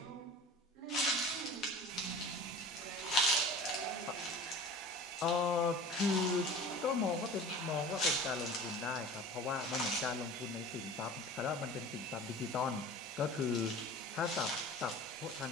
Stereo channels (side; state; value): both; normal; correlation 0.39